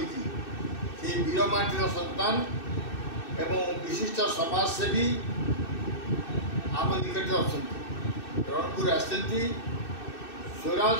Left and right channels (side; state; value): right; late; 2.6 ms